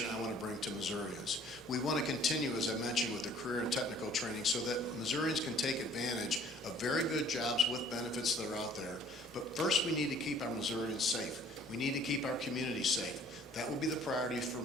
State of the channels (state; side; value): normal; both; correlation 0.55